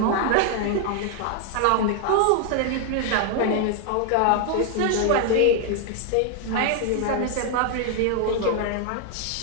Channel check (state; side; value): different; both; correlation 0.00